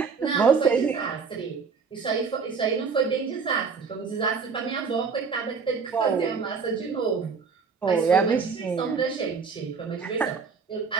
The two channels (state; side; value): quieter; left; 5.3 dB